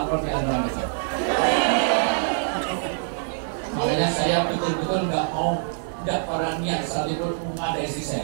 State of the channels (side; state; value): left; silent; 62 dB below the other